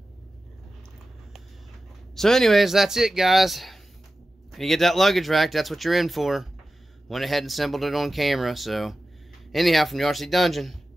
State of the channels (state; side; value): normal; both; correlation 0.94